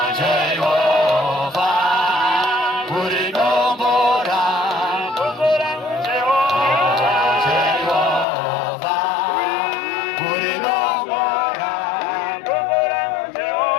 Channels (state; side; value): drops out; right; at 8.2 s